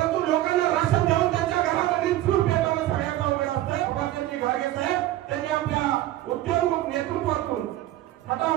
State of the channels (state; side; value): quieter; left; 14.6 dB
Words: लोकांना राशन देऊन त्यांच्या घरामध्ये चूल पेटवणं सगळ्यात अवघड असतं। बाबाजी घागे साहेब त्यांनी आपल्या उद्योग नेतृत्वातून